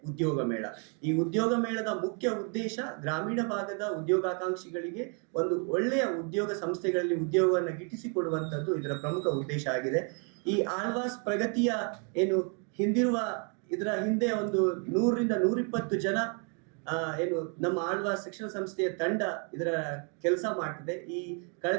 ಉದ್ಯೋಗ ಮೇಳ. ಈ ಉದ್ಯೋಗ ಮೇಳದ ಮುಖ್ಯ ಉದ್ದೇಶ ಗ್ರಾಮೀಣ ಭಾಗದ ಉದ್ಯೋಗಾಕಾಂಕ್ಷಿಗಳಿಗೆ ಒಂದು ಒಳ್ಳೆಯ ಉದ್ಯೋಗ ಸಂಸ್ಥೆಗಳಲ್ಲಿ ಉದ್ಯೋಗವನ್ನು ಗಿಟ್ಟಿಸಿಕೊಡುವಂತದ್ದು ಇದರ ಪ್ರಮುಖ ಉದ್ದೇಶ ಆಗಿದೆ. ಈ ಆಳ್ವಾಸ್ ಪ್ರಗತಿಯ ಏನು ಇದರ ಹಿಂದೆ ಒಂದು 100ರಿಂದ 120 ಜನ ಏನು ನಮ್ಮ ಆಳ್ವಾಸ್ ಶಿಕ್ಷಣ ಸಂಸ್ಥೆಯ ತಂಡ ಇದರ ಕೆಲಸ ಮಾಡ್ತಿದೆ. ಈ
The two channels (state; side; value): quieter; left; 38.7 dB